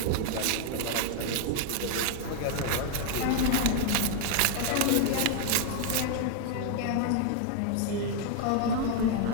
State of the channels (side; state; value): both; different; correlation 0.00